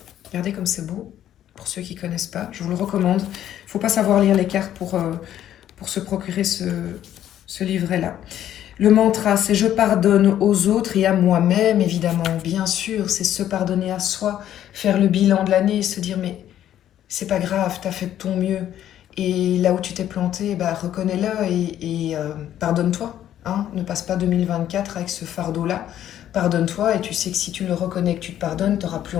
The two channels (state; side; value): quieter; right; 11.4 dB